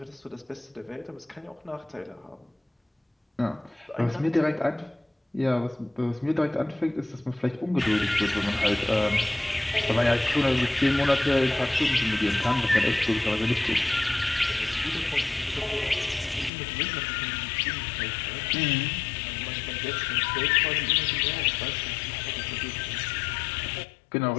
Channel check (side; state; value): right; drops out; at 16.5 s